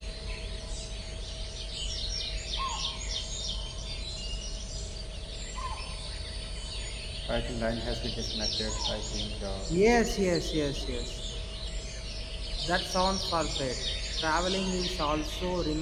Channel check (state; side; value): identical; both; correlation 1.00